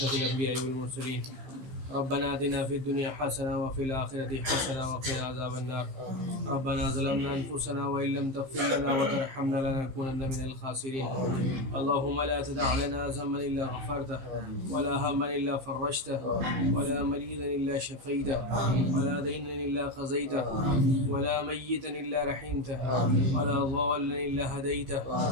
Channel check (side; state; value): left; late; 15 ms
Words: الأنبياء والمرسلين ربنا آتنا في الدنيا حسنة وفي الآخرة حسنة وقنا عذاب النار ربنا ظلمنا أنفسنا وإن لم تغفر لنا وترحمنا لنكونن من الخاسرين اللهم لا تدع لنا ذنبا إلا غفرته ولا هما إلا فرجته ولا مريضا إلا شفيته ولا دينا إلا قضيته ولا ميتا إلا رحمته ولا ضالا إلا هديته